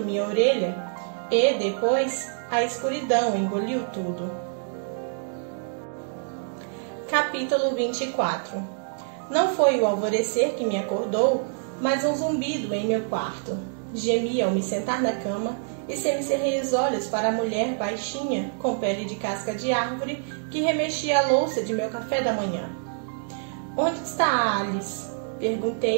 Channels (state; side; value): silent; left; 61 dB below the other